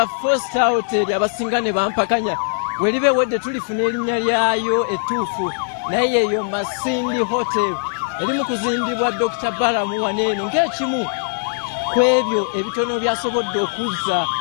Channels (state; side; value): silent; right; 66 dB below the other